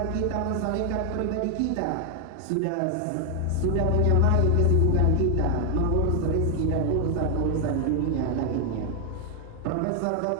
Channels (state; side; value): different; both; correlation 0.00